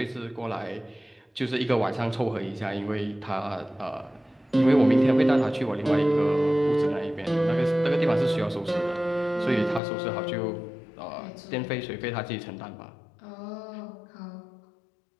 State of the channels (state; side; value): drops out; right; at 9.8 s